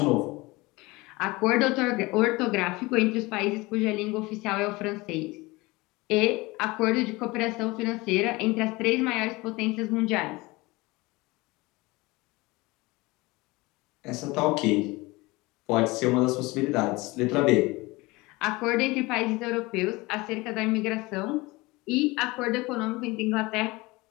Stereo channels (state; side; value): quieter; right; 22.5 dB